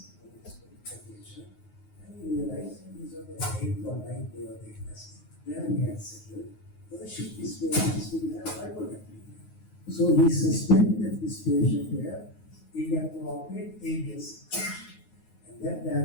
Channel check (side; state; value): right; late; 9.5 ms